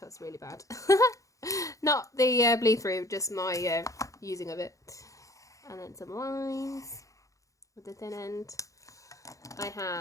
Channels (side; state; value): right; late; 0.16 ms